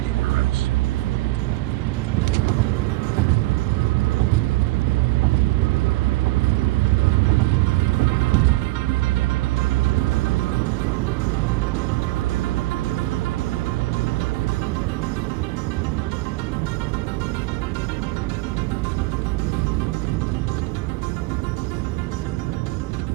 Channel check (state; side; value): quieter; left; 20.1 dB